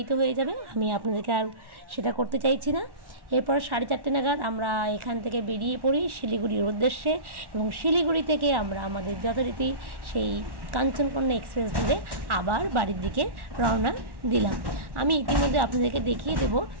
হয়ে যাবে। আমি আপনাদেরকে আর সেটা করতে চাইছি না। এরপর 4:30 নাগাদ আমরা এখান থেকে বেরিয়ে পড়ি শিলিগুড়ির উদ্দেশ্যে, এবং শিলিগুড়ি থেকে আমরা আমাদের যথারীতি সেই কাঞ্চনকন্যা এক্সপ্রেস ধরে আবার বাড়ির দিকে রওনা দিলাম। আমি ইতিমধ্যে আপনাদেরকে দেখিয়ে দেবো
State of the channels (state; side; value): late; left; 1.1 ms